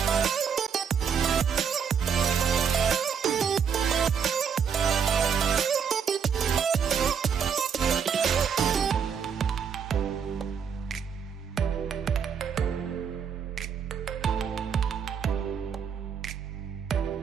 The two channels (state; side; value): quieter; left; 7.1 dB